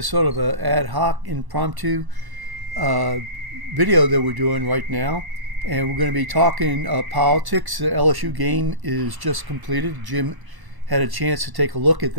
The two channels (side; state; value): left; late; 1.1 ms